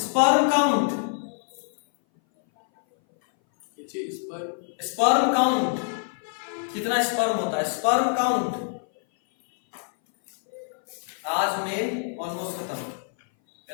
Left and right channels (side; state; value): right; silent; 58 dB below the other